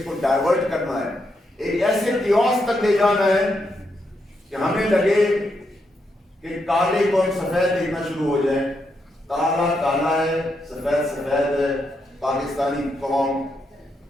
کو ڈائیورٹ کرنا ہے, ایک ایسے کیوس تک لے جانا ہے کہ ہمیں لگے کہ کالے کو ہم سفید دیکھنا شروع ہو جائیں. کالا کالا ہے, سفید سفید ہے. پاکستانی قوم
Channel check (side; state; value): both; normal; correlation 0.81